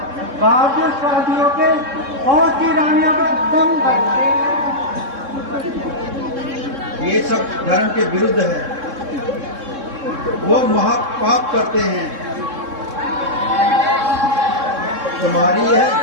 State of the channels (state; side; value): late; left; 3.7 ms